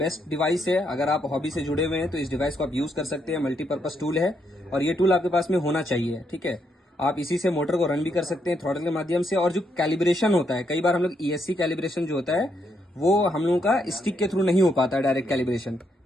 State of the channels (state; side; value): normal; both; correlation 0.77